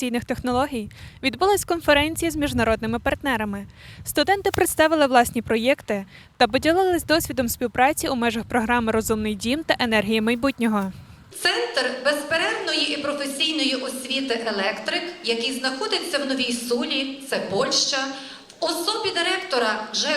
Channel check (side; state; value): both; identical; correlation 1.00